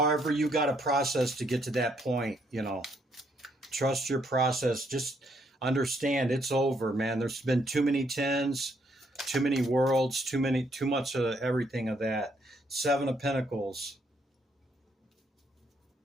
you got to process to get to that point, you know, trust your process. Just understand it's over, man. There's been too many 10s, too many worlds, too much of everything of that. 7 of Pentacles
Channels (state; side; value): normal; both; correlation 0.72